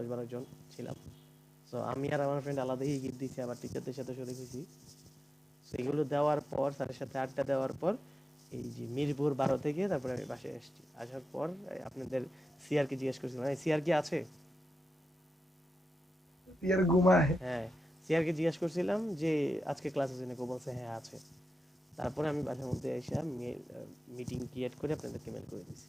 জন ছিলাম। সো আমি আর আমার ফ্রেন্ড আলাদাই গিফট দিয়েছি, আবার টিচারদের সাথে শরিক হয়েছি। সেগুলো দেওয়ার পর স্যারের সাথে আড্ডা দেওয়ার পর এই যে মিরপুর 12 থেকে তারপরে আমি বাসায় আসছি। আসার পর আপনাদের সিআর কে জিজ্ঞেস করছিলাম, সিআর কি আছে? ইয়ার ঘুমায়। হ্যাঁ সিআর কে জিজ্ঞেস করছিলাম যে আজকে ক্লাস আছে নাকি, ও বলছে হ্যাঁ আছে। তারপরে আমি বাসার মধ্যে এসে মিটিং ক্রিয়েট করে আপনাদেরকে মেল করে দিয়েছি।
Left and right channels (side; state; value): both; normal; correlation 0.90